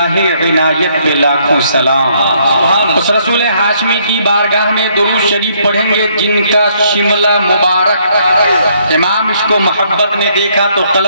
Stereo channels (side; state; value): both; inverted; correlation -0.68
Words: عنایت پہ لاکھوں سلام۔ اس رسول ہاشمی کی بارگاہ میں درود شریف پڑھیں گے جن کا شملہ مبارک امام عشق و محبت نے دیکھا تو